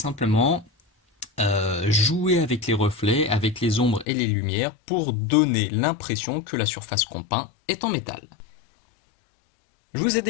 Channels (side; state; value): right; drops out; at 4.0 s